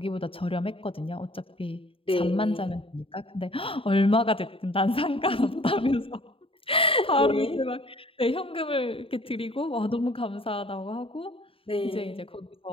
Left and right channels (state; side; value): late; right; 0.27 ms